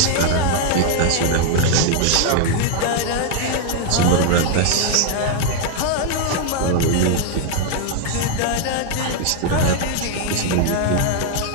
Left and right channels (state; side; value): different; both; correlation 0.00